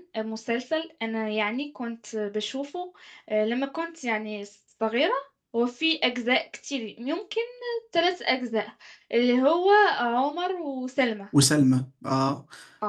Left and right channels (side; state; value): both; identical; correlation 1.00